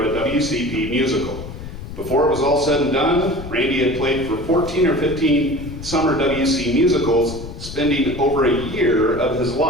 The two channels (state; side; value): noise; left; rumble, 11 dB below the sound